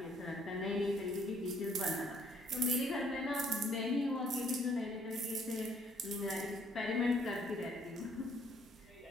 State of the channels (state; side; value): normal; both; correlation 0.64